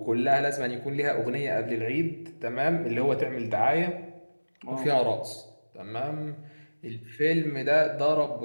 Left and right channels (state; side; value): inverted; both; correlation -1.00